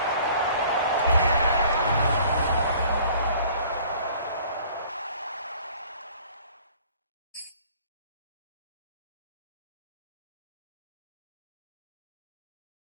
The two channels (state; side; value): inverted; both; correlation -0.52